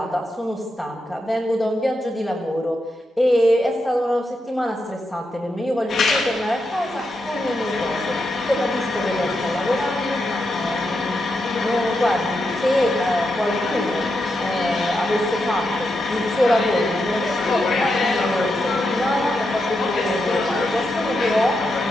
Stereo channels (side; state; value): both; normal; correlation 0.85